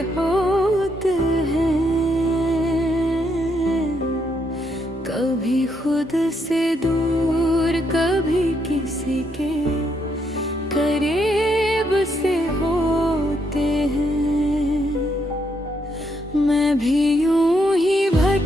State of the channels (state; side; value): normal; both; correlation 0.76